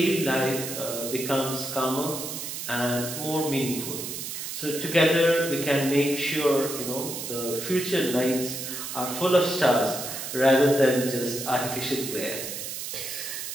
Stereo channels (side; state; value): right; noise; hiss, 6 dB below the sound